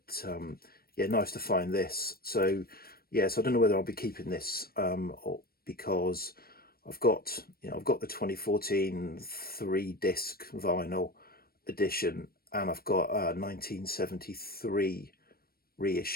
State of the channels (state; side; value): late; right; 0.44 ms